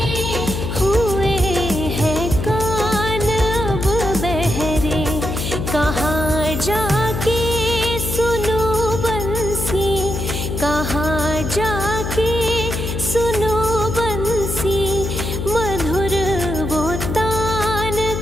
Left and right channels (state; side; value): noise; left; hum, 3 dB below the sound